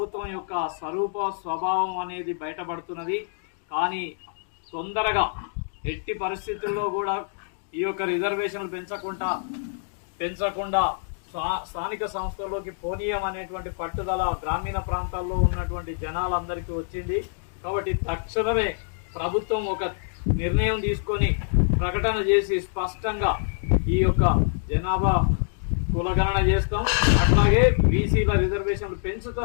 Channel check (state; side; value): silent; right; digital silence